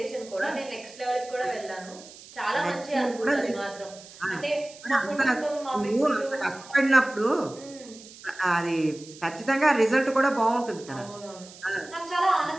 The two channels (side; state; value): right; noise; hiss, 19 dB below the sound